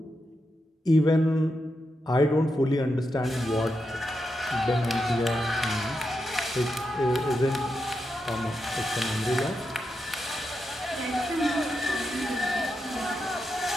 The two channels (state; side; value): normal; both; correlation 0.86